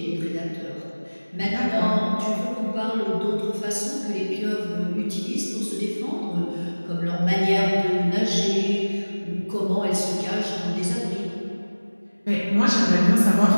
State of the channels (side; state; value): both; inverted; correlation -1.00